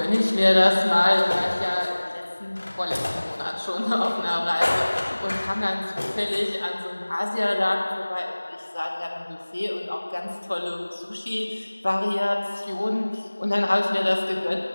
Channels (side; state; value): both; inverted; correlation -1.00